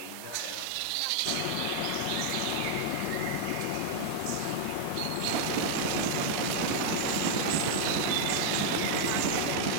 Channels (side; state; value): both; different; correlation 0.00